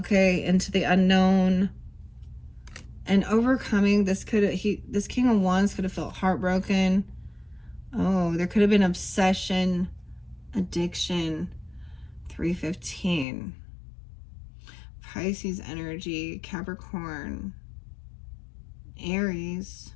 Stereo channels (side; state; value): right; drops out; at 13.2 s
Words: into the unknown, and overcoming this. This King of Wands could have felt heartbroken. Oh, there could have been obsession, addiction. 315. Pisces energy, Capricorn, Aries,